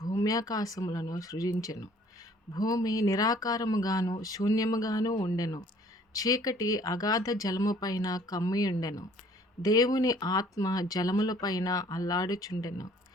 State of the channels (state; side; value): normal; both; correlation 0.57